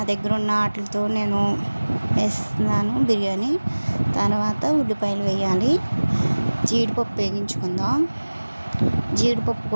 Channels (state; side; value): inverted; both; correlation -1.00